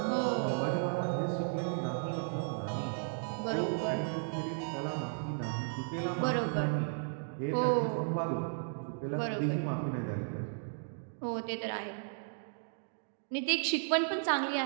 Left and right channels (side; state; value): left; silent; digital silence